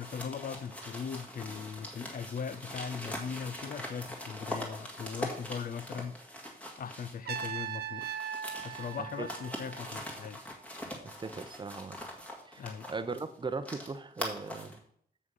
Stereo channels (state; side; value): normal; both; correlation 0.39